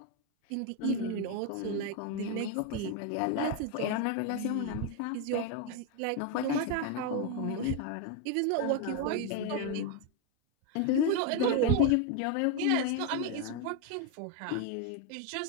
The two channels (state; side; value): different; both; correlation 0.01